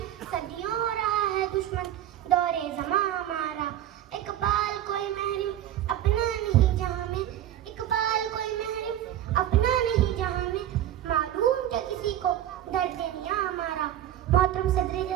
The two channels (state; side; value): quieter; left; 11.9 dB